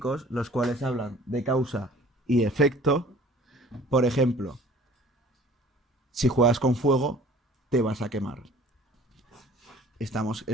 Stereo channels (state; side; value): normal; both; correlation 0.50